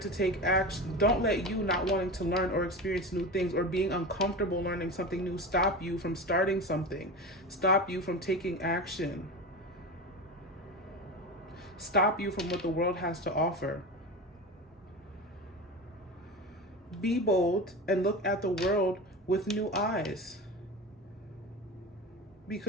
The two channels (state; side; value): normal; both; correlation 0.27